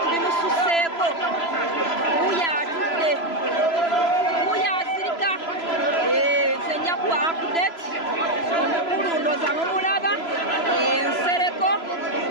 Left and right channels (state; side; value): late; right; 3.0 ms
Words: bimususeeko, wuuyo atudde, wuuyo azirika. Nze nja kuwa update, omukulu ndooza mumulaba, Nsereko